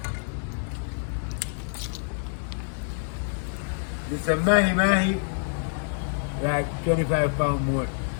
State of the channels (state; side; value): silent; right; digital silence